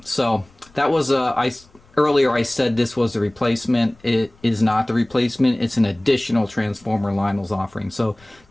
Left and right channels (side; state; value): left; noise; rumble, 29 dB below the sound